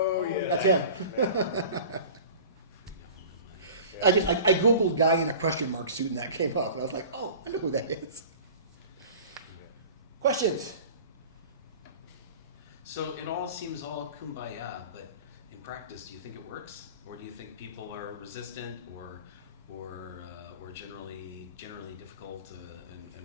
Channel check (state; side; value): inverted; both; correlation -0.41